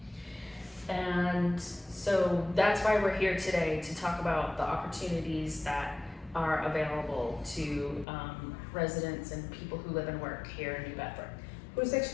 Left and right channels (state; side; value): drops out; right; at 8.1 s